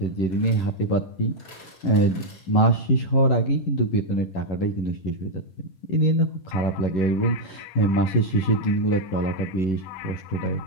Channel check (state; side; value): late; right; 11 ms